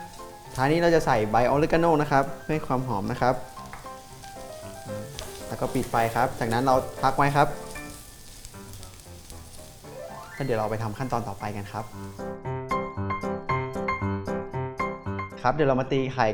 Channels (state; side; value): identical; both; correlation 1.00